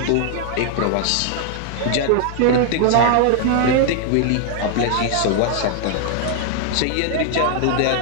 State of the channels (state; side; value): different; both; correlation 0.00